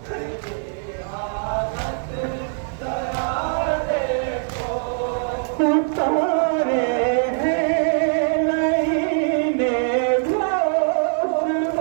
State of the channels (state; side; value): silent; left; 59 dB below the other